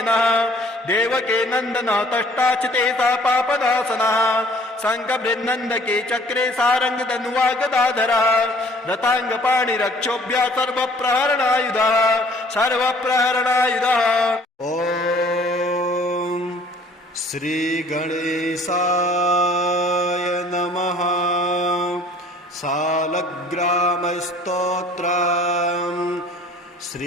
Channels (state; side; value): normal; both; correlation 0.54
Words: देवके नन्दनः तष्टाचिते सा पापनाशनः शङ्खबृन्नन्दके चक्रे सारङ्गधनुवा गदाधरः रथाङ्गपाणिरक्षोभ्यः सर्वप्रहरणायुधः सर्वप्रहरणायुधः ॐ श्रीगणेशाय नमः सालग्रामस्तोत्रम्